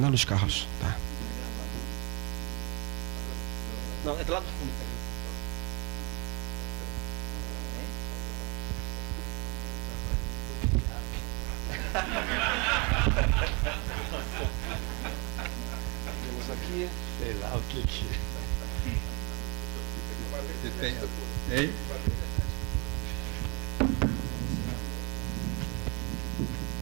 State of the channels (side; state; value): left; quieter; 30.4 dB